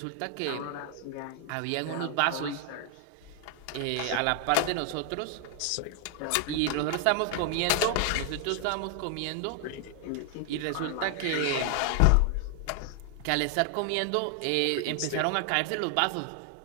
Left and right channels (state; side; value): different; both; correlation 0.00